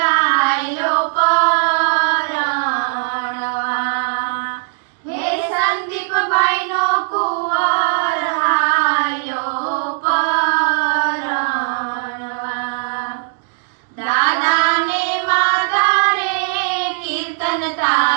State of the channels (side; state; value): left; silent; digital silence